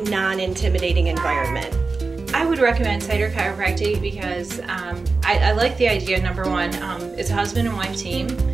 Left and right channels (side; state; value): left; quieter; 4.0 dB